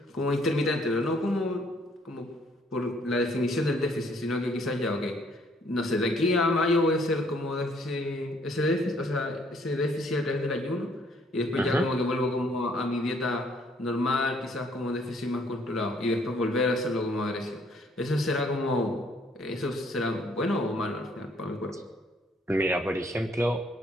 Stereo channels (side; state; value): both; normal; correlation 0.64